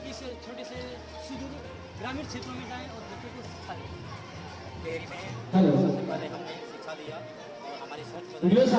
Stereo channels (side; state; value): both; identical; correlation 1.00